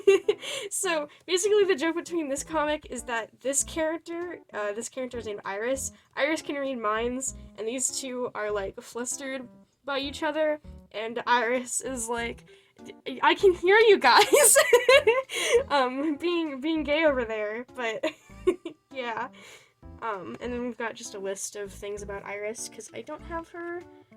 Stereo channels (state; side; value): identical; both; correlation 1.00